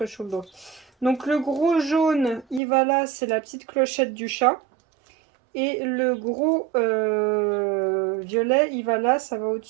sur le dos. Donc le gros jaune, il va là, c'est la petite clochette du chat. Et le gros violet, il va là, ça va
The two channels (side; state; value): left; drops out; at 2.6 s